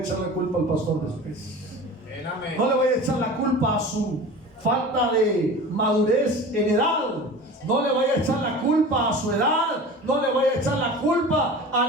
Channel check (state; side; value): normal; both; correlation 0.36